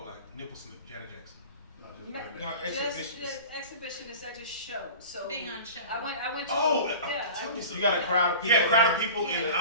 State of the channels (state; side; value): inverted; both; correlation -0.38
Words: like nipple slip, Janet Jackson. No, exhibitionist. Exhibitionist. I just show. So Being on show. I went to. Tell me something. You got a crowd of people. Yeah, crowd of people,